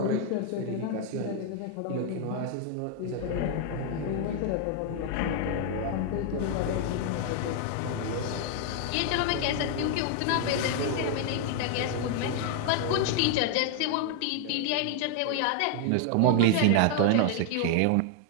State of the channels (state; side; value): different; both; correlation 0.00